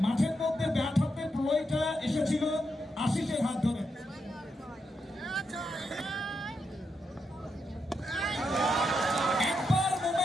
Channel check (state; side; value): normal; both; correlation 0.83